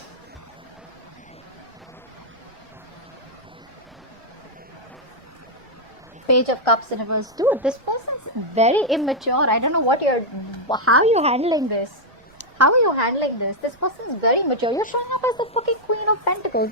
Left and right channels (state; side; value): noise; right; rumble, 29 dB below the sound